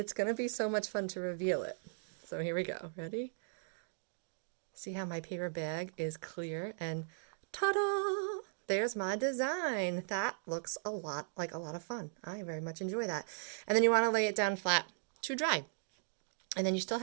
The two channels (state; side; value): silent; left; digital silence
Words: going to be so much fun to reveal it. So here we go. Ready? See how my paper bag is clear, and ta-da! There's my design. That looks a lot like a lot of fun. I very much enjoy that. And then you want to lay it down flat to dry. And then you still